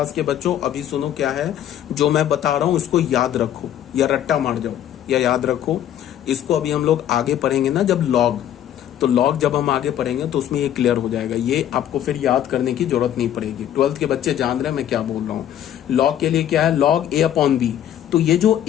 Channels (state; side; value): quieter; right; 10.9 dB